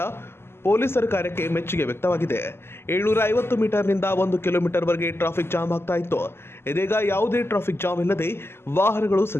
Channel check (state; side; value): late; right; 0.12 ms